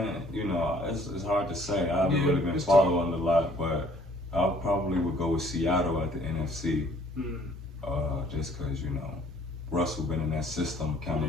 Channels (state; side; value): normal; both; correlation 0.58